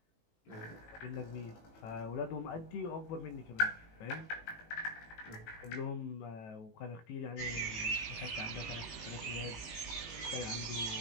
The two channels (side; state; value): right; late; 18 ms